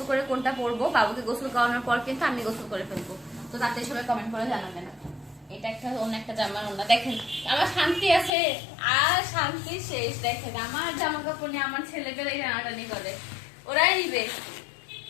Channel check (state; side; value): drops out; right; at 8.3 s